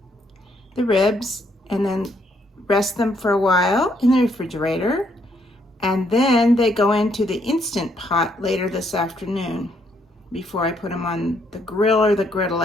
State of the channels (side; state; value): both; normal; correlation 0.71